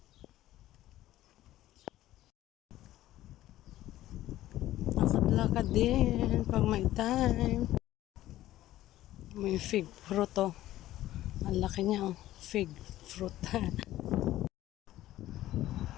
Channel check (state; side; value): quieter; right; 14.5 dB